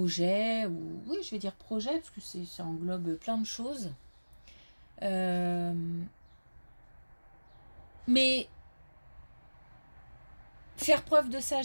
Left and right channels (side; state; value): both; inverted; correlation -1.00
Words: ou oui je vais dire projet parce que ça englobe plein de choses. Mais faire preuve de